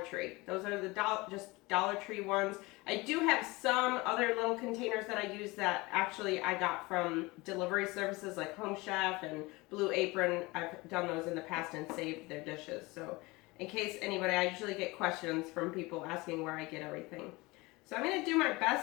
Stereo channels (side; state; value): right; quieter; 23.1 dB